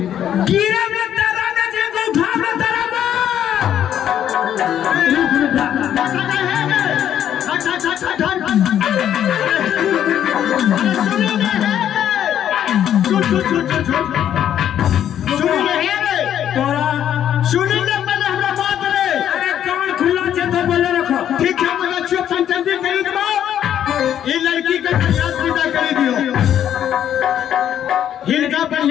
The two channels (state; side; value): quieter; right; 10.2 dB